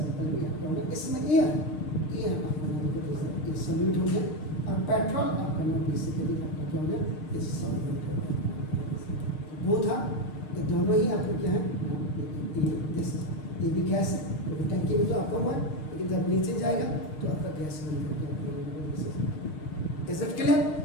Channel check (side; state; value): right; late; 6.6 ms